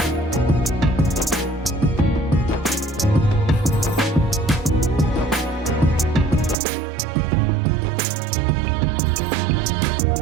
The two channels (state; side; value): drops out; left; at 6.6 s